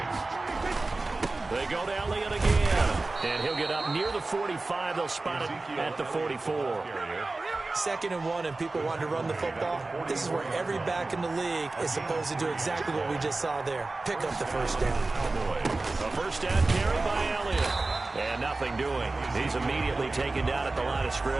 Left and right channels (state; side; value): quieter; left; 3.3 dB